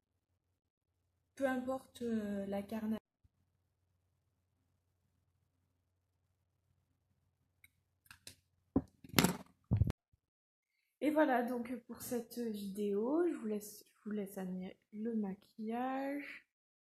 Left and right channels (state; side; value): identical; both; correlation 1.00